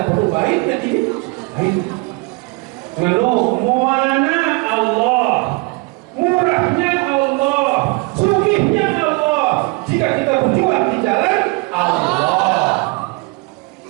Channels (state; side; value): quieter; left; 27.6 dB